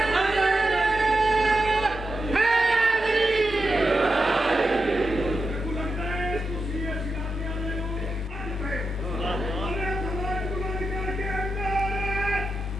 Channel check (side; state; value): both; normal; correlation 0.88